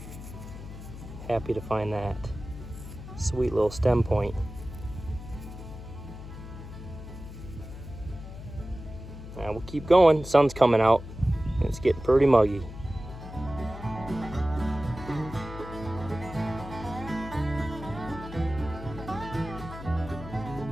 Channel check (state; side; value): noise; left; hum, 12 dB below the sound